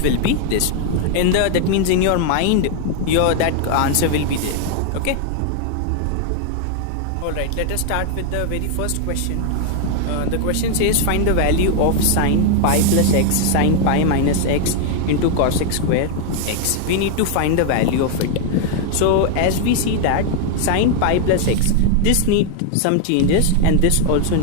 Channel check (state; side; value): different; both; correlation 0.00